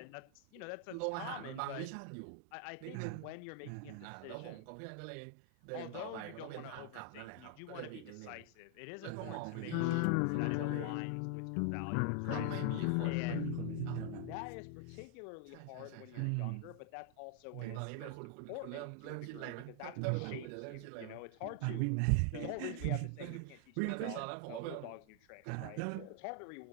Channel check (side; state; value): both; different; correlation 0.00